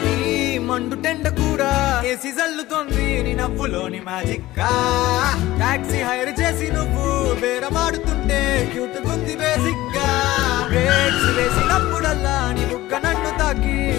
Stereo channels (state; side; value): quieter; right; 16.9 dB